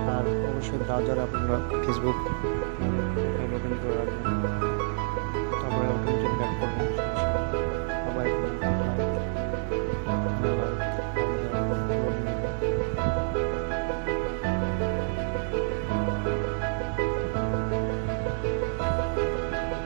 আর অবশ্যই ব্রাউজারে আপনারা ফেসবুক লগ ইন করে রাখবেন, তারপরে অটোমেটিক ব্যাক করবেন, আবার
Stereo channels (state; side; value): silent; left; 59 dB below the other